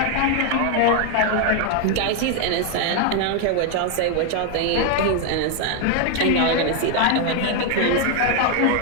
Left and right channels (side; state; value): both; different; correlation 0.01